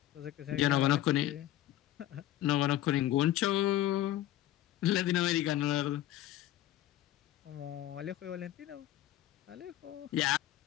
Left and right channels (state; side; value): quieter; right; 13.6 dB